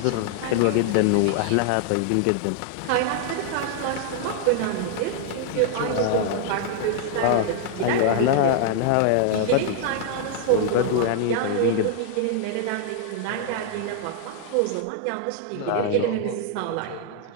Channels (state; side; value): different; both; correlation 0.00